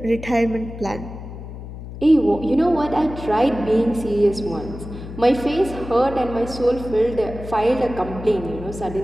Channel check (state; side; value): noise; left; hum, 11 dB below the sound